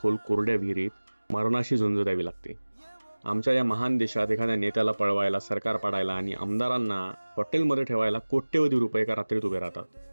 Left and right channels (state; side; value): inverted; both; correlation -1.00